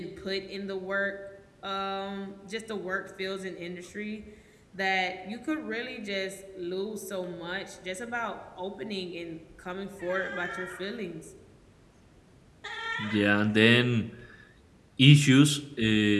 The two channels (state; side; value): identical; both; correlation 1.00